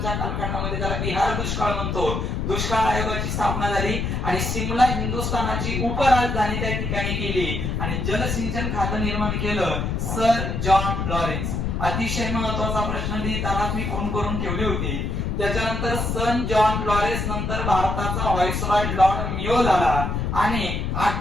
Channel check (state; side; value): noise; left; rumble, 1 dB below the sound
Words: कालखंडामध्ये, त्याला बिहार दुष्काळ म्हणतो. दुष्काळ आयोगाची स्थापना झाली आणि शिमला हिंदुस्थानाची उपराजधानी त्या ठिकाणी केली आणि जलसिंचन खातं निर्माण केलं सर जॉन लॉरेन्स. अतिशय महत्वाचा प्रश्न लिहिताना मी फोन करून ठेवली होती. त्याच्यानंतर सन जॉन लॉरेन्स नंतर भारताचा व्हाईसरॉय लॉर्ड मियो झाला आणि